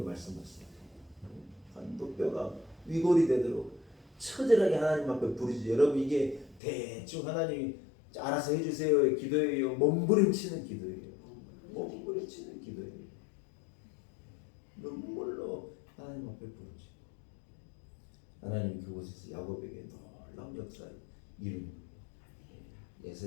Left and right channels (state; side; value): drops out; right; at 6.6 s